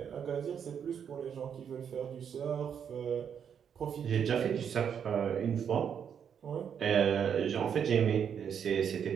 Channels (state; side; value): quieter; left; 7.9 dB